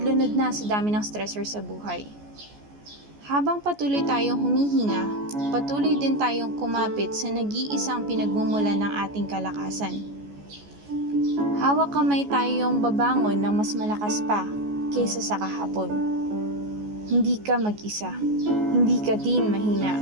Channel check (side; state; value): left; late; 14 ms